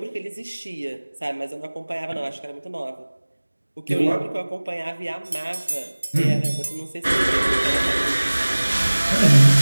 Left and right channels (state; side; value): inverted; both; correlation -1.00